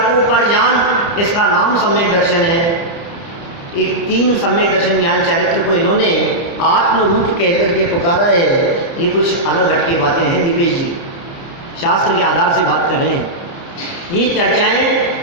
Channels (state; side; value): late; right; 29 ms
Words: को पर जान, इसका नाम सम्यक दर्शन है। एक 3 सम्यक दर्शन ज्ञान चारित्र को इन्होंने आत्म रूप कह करके पुकारा है। ये कुछ अलग हट की बातें हैं दीपेश जी, शास्त्र के आधार से बात कर रहे हैं। ये